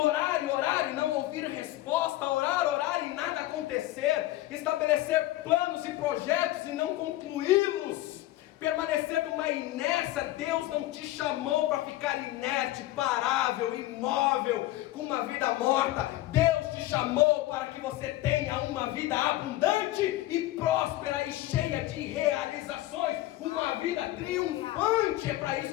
e não ouvir resposta, orar e nada acontecer, estabelecer planos e projetos e não concluí-los, permanecer numa inércia. Deus não te chamou para ficar inerte, parável, imóvel, com uma vida morta. Deus te chamou para que você tenha uma vida abundante e próspera e cheia de realizações, uma vida triunfante. É para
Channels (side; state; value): right; quieter; 16.1 dB